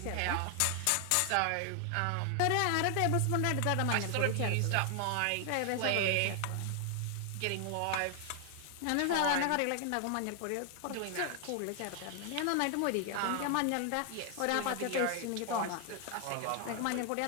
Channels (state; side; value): different; both; correlation 0.00